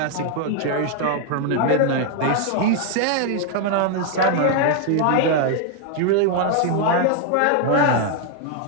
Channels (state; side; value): different; both; correlation 0.00